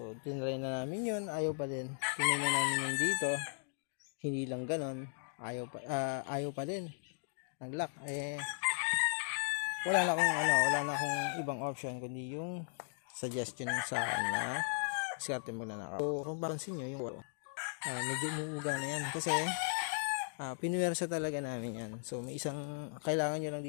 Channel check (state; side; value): silent; right; digital silence